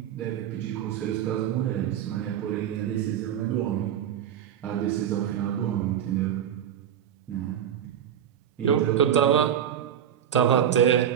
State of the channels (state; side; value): quieter; left; 9.6 dB